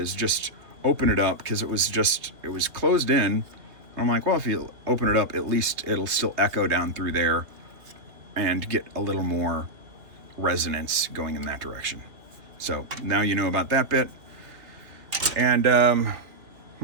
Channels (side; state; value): left; late; 3.0 ms